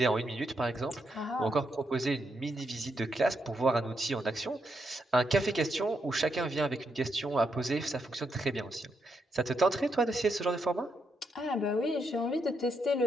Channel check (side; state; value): both; normal; correlation 0.80